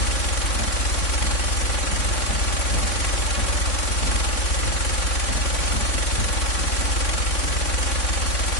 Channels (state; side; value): late; right; 3.6 ms